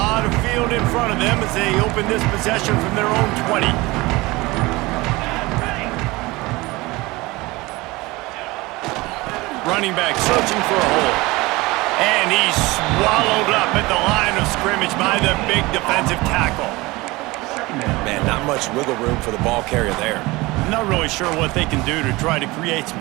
of field in front of them as they open this possession from their own 20. Running back searching for a hole. And he's swallowed up at the line of scrimmage by the big defensive tackle. Man, not much wiggle room for the ball carrier there. Not really sure what they can do to try to create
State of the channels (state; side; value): quieter; left; 21.8 dB